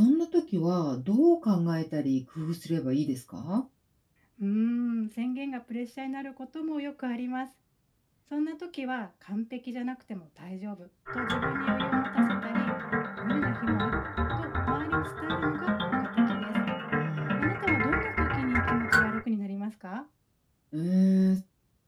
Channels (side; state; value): both; identical; correlation 1.00